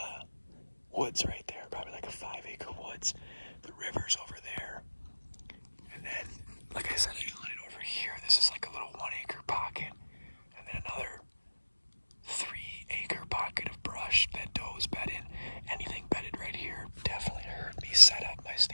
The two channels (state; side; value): inverted; both; correlation -1.00